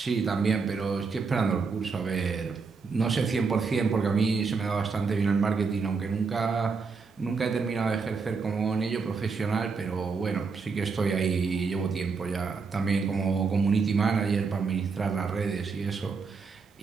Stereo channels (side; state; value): left; quieter; 4.9 dB